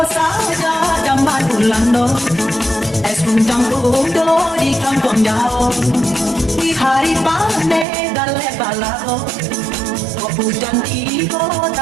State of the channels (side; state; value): left; drops out; at 7.9 s